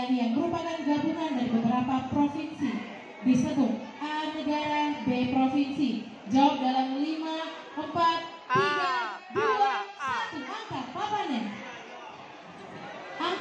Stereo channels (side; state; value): both; identical; correlation 1.00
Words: yang merupakan gabungan dari beberapa provinsi disebut A. Negara, B. Provinsi. Jawab dalam 5, 4, 3, 2, 1. Angkat papannya.